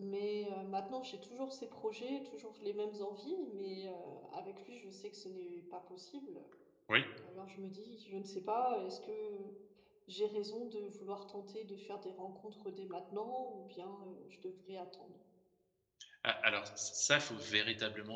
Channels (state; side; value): identical; both; correlation 1.00